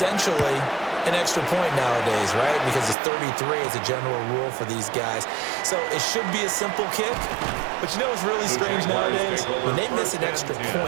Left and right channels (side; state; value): left; drops out; at 3.0 s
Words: an extra point nowadays, right? Because it's 33 as a general rule for these guys. So it should be a simple kick. But you know what's really strange nowadays? When they miss an extra